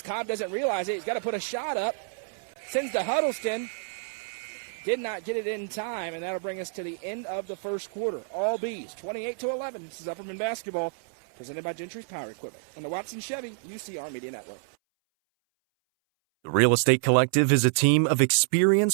Cobb doesn't realize it. He's got to put a shot up. Sends to Huddleston. Did not get it in time, and that'll bring us to the end of the first quarter. All Bees, 28-11. This is Upperman basketball, presented by Gentry's Power Equipment on the Watson Chevy UCR Media Network. The Real Estate Collective is a team of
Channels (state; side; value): silent; left; 59 dB below the other